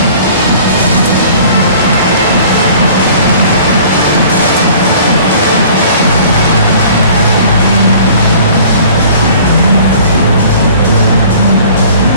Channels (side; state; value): both; inverted; correlation -0.49